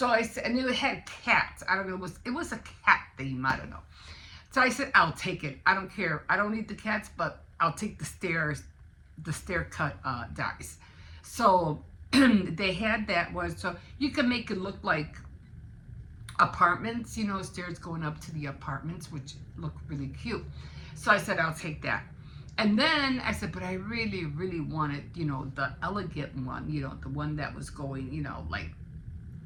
I said, and it had cats. I don't know, it was a cat theme. I don't know. So I said, I'll take it. I don't care. I don't need the cats, but I'll take the stair cut dies. So they had that one, so you can make it look like apartments, stairs going up to the apartments, which look really cute. So I said, I'll take that. And then I said, but I really, really wanted, the elegant one, the one that was going, like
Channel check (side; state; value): both; identical; correlation 1.00